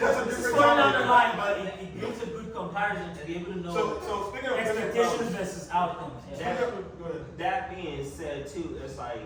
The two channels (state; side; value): identical; both; correlation 1.00